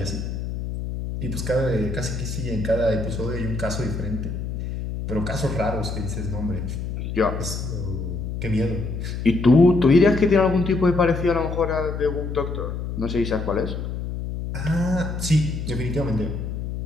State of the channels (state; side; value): noise; left; hum, 5 dB below the sound